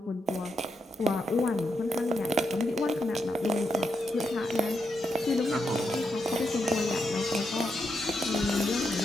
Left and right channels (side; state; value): both; normal; correlation 0.82